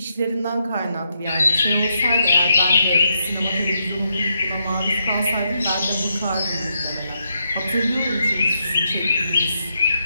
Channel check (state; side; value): inverted; both; correlation -0.80